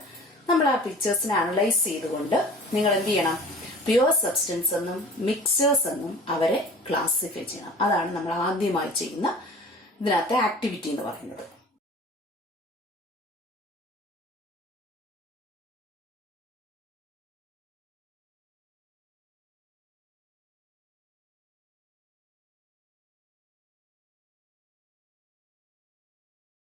നമ്മൾ ആ പിക്ചേഴ്സിനെ അനലൈസ് ചെയ്തുകൊണ്ട് നിങ്ങൾ എന്ത് ചെയ്യണം? പ്യുവർ സബ്സ്റ്റൻസ് എന്നും മിക്സേഴ്സ് എന്നും അവരെ ക്ലാസിഫൈ ചെയ്യണം. അതാണ് നമ്മൾ ആദ്യമായി ചെയ്യുന്ന ഇതിനകത്തെ ആക്ടിവിറ്റി എന്ന് പറയുന്നത്.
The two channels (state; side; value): normal; both; correlation 0.43